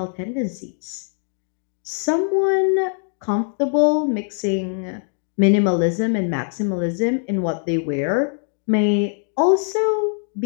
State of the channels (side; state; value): right; silent; 58 dB below the other